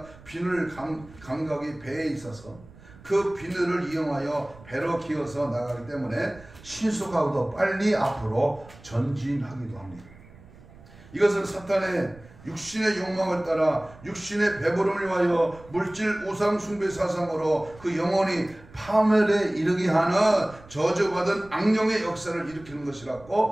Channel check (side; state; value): right; noise; rumble, 22 dB below the sound